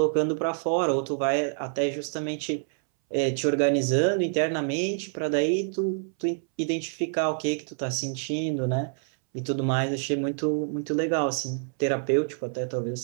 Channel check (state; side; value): silent; left; 60 dB below the other